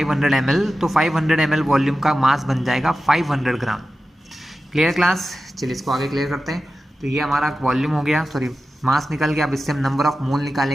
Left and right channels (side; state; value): both; normal; correlation 0.93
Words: ml, तो 500 ml वॉल्यूम का मास बन जाएगा 500 ग्राम। Clear class? चलिए इसको आगे क्लियर करते हैं। तो ये हमारा वॉल्यूम हो गया, सॉरी मास निकल गया। अब इससे हम नंबर ऑफ मोल